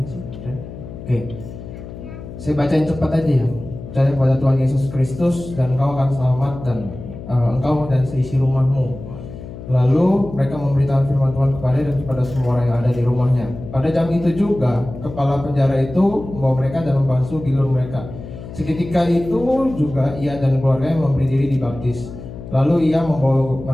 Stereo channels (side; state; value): left; noise; hum, 12 dB below the sound